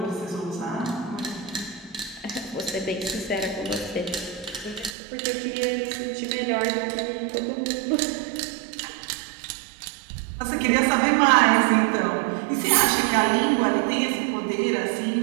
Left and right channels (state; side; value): drops out; left; at 5.0 s